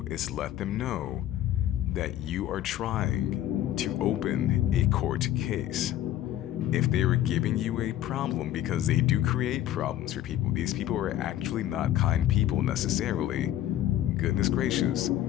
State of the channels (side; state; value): right; quieter; 12.6 dB